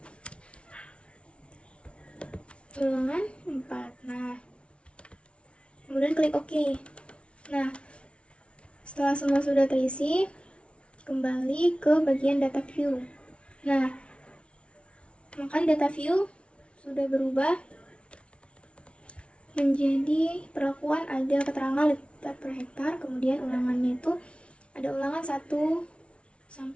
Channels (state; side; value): late; right; 0.060 ms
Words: ulangan 4. Nah, kemudian klik OK. Nah, setelah semua sudah terisi, kembali ke bagian data view. Nah, maka di data view sudah berubah menjadi perlakuan ada keterangan liter per hektar, kemudian ulangannya itu ada ulangan 1